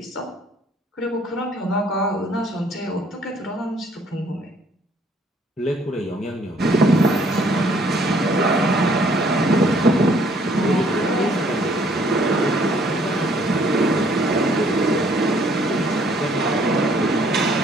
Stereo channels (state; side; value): normal; both; correlation 0.63